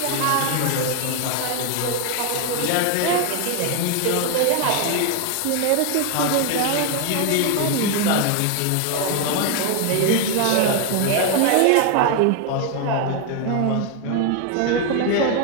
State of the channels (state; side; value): different; both; correlation 0.01